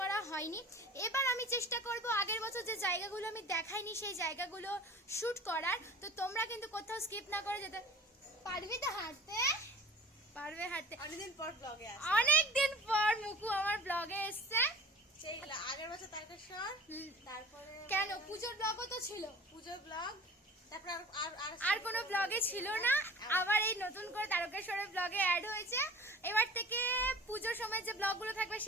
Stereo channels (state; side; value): normal; both; correlation 0.43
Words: হয়নি। এবার আমি চেষ্টা করব আগের বছর যে জায়গাগুলো আমি দেখাইনি সেই জায়গাগুলো শ্যুট করার। তো তোমরা কিন্তু কোথাও স্কিপ না করে যেতে পারবি। তো হাঁটতে পারবে, হাঁটতে অনেকদিন পর মুকু আমার ব্লগে এসছে। আগের বছর তারকেশ্বর, তারপরে কেন পুজোর ব্লগও তো ছিল, পুজোর ব্লগ, তারপর আর কোনো ব্লগে ছিল না। আবার এই নতুন করে তারকেশ্বরের ব্লগে অ্যাড হয়েছে। এবার থেকে পুজোর সময় যে ব্লগগুলো থাকবে